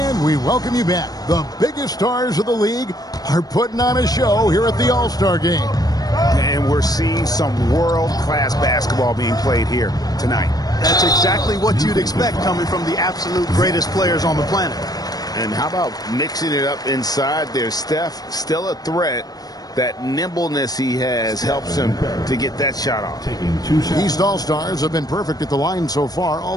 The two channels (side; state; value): right; late; 0.19 ms